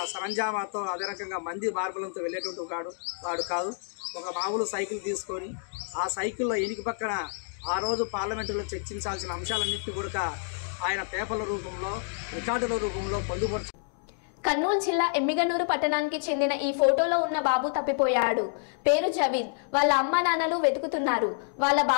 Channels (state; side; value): silent; right; digital silence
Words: సరంజామాతో, అదే రకంగా మంది మార్బలంతో వెళ్ళేటువంటి వాడు కాదు. ఒక మామూలు సైకిల్ తీసుకొని ఆ సైకిల్లో ఎనికి పక్కన ఆ రోజు పార్లమెంటులో చర్చించాల్సిన అంశాలన్నింటినీ కూడా ఆయన పేపర్ల రూపంలో, రికార్డుల రూపంలో పొందుపరుచు. కర్నూలు జిల్లా ఎమ్మిగనూరు పట్టణానికి చెందిన ఈ ఫోటోలో ఉన్న బాబు తప్పిపోయాడు. పేరు జవీద్. వాళ్ళ అమ్మ నాన్నలు వెతుకుతున్నారు. వాళ్ళ